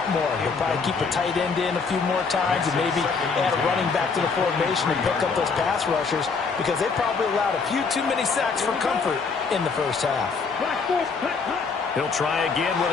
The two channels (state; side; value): quieter; right; 4.9 dB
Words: more. They'll probably keep a tight end in a few more times and maybe add a running back to the formation and pick up those pass rushers, because they probably allowed a few too many sacks for comfort in the first half. He'll try again with